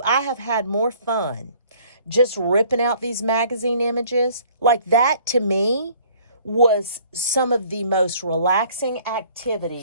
I have had more fun just ripping out these magazine images, like that to me was some of the most relaxing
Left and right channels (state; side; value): inverted; both; correlation -0.56